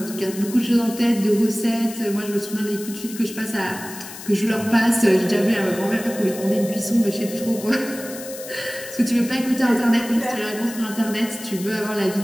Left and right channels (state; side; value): noise; left; hiss, 13 dB below the sound